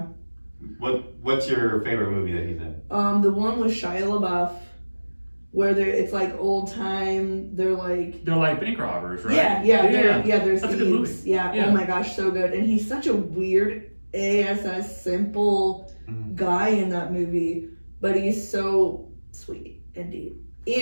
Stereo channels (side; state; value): both; inverted; correlation -1.00